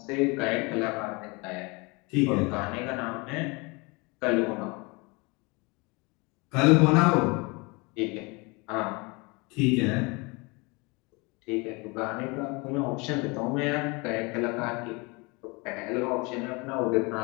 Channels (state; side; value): quieter; right; 27.5 dB